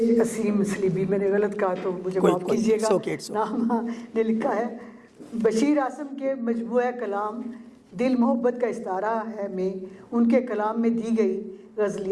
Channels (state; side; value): identical; both; correlation 1.00